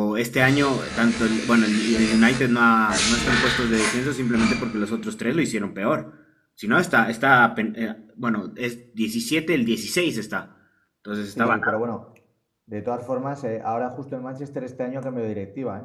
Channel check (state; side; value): identical; both; correlation 1.00